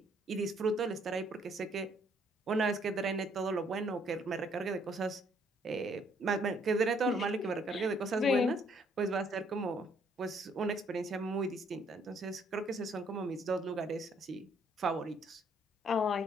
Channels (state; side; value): normal; both; correlation 0.66